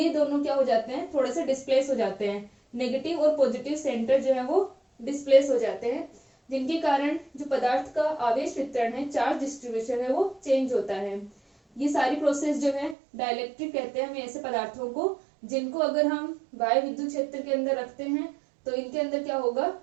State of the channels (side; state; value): left; drops out; at 13.0 s